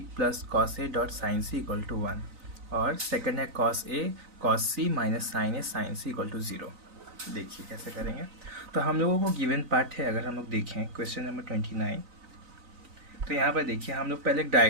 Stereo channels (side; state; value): left; late; 3.9 ms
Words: plus cos A dot sine C equal to 1, और सेकंड है cos A cos C minus sine A sine C equal to 0। देखिए कैसे करेंगे। तो हम लोगों को गिवन पार्ट है, अगर हम लोग देखें क्वेश्चन नंबर 29, तो यहाँ पर देखिए हम लोग पहले एक